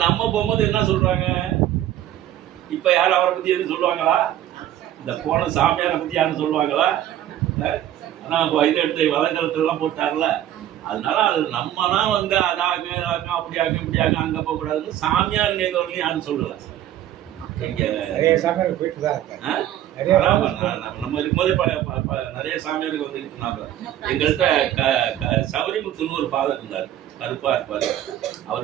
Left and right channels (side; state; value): left; quieter; 12.1 dB